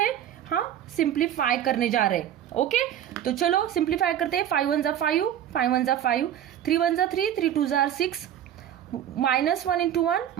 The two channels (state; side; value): quieter; left; 10.6 dB